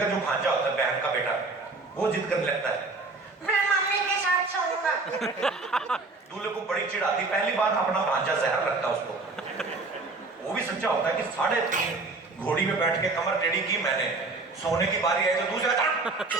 जो भांजा होता है, बहन का बेटा, वो जिद करने लगता है, मैं मम्मी के साथ सोऊंगा। दूल्हे को बड़ी चिढ़ आती, पहली बार अपना भांजा जहर लगता है उसको। वो भी सच्चा होता है कि 3.5 घोड़ी में बैठ के कमर टेढ़ी की मैंने, सोने की बारी आई तो दूसरा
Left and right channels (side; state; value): left; quieter; 3.6 dB